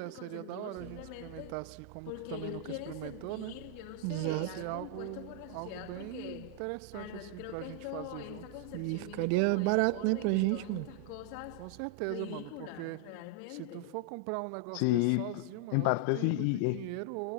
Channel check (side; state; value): both; different; correlation 0.00